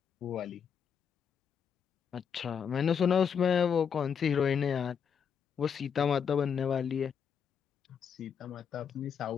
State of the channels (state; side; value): quieter; right; 7.3 dB